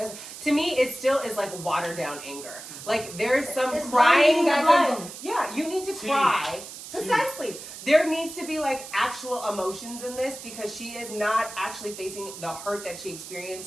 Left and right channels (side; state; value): right; noise; hiss, 12 dB below the sound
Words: to me it still is like watered down anger. Like there's some It's crying blinding that's the blind. yeah, you need to Tea. cry, Precisely. There needs to be like actual emotions in this because she is not actually facing the hurt that she